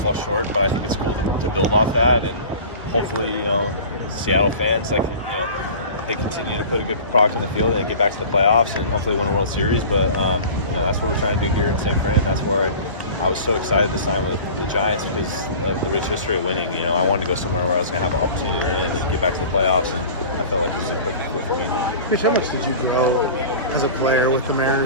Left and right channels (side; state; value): both; inverted; correlation -0.39